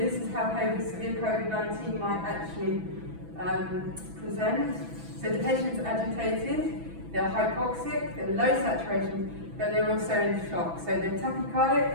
is how severe COVID-19 might actually present. So the patient's agitated, they're hypoxic, they're low saturation, but they're also in shock. So they're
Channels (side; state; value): left; late; 6.0 ms